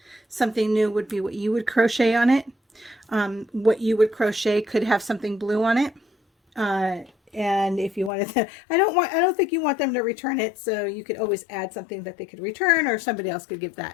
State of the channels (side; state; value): right; drops out; at 8.1 s